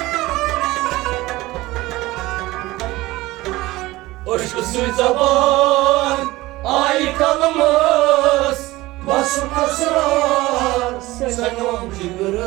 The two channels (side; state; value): left; quieter; 19.0 dB